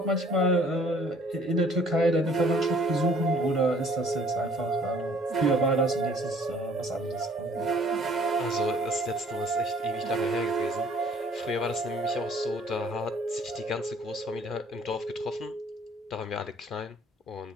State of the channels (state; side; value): normal; both; correlation 0.57